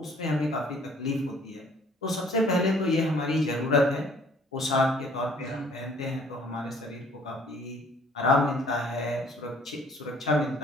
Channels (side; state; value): both; normal; correlation 0.57